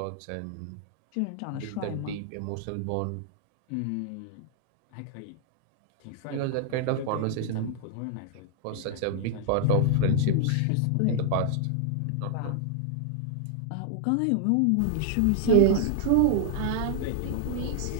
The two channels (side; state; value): both; different; correlation 0.00